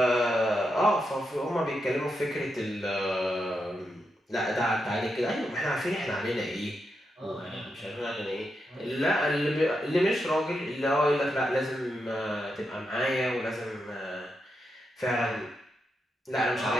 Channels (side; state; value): both; normal; correlation 0.85